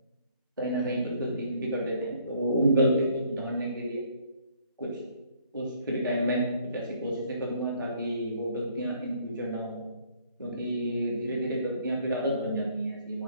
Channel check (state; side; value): inverted; both; correlation -0.63